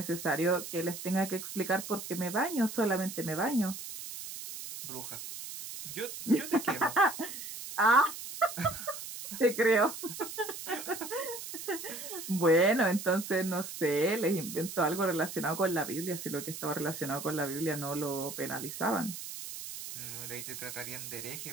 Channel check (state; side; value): noise; right; hiss, 9 dB below the sound